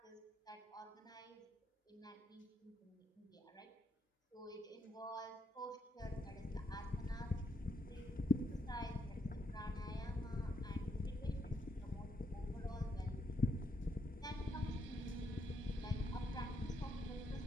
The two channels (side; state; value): both; normal; correlation 0.78